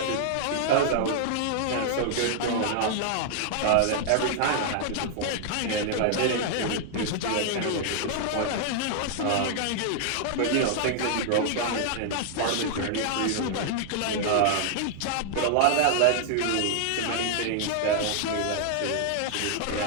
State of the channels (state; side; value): different; both; correlation 0.00